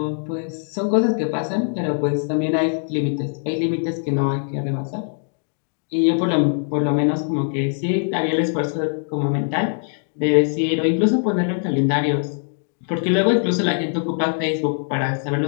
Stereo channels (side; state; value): right; silent; digital silence